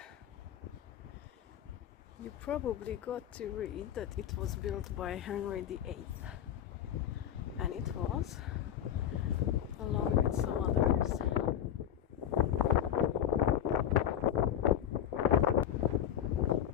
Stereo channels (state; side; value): quieter; right; 10.3 dB